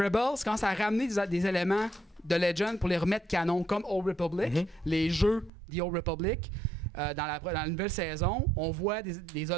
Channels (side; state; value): left; drops out; at 5.5 s